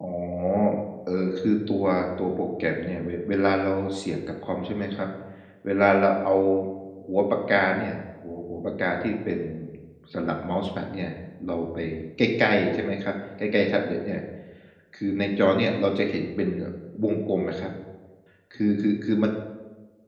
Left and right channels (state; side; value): identical; both; correlation 1.00